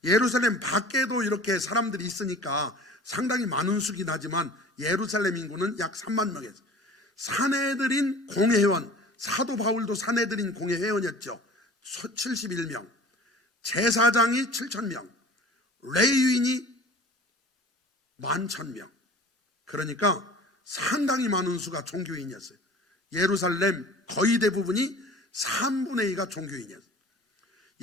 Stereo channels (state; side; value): normal; both; correlation 0.42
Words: 예루살렘 밖에도 이렇게 사람들이 있으니까 상당히 많은 수긴 하지만 예루살렘 인구는 약 3만 명이었어요. 사내들인 공회원, 사도 바울도 사내들인 공회회원이었죠. 71명. 제사장이 7,000명, 레위인이 11,000명. 그러니까 상당히 많은 수가 종교인이었어요. 예루살렘 거의 대부분이 3분의 2가 종교인이었어요.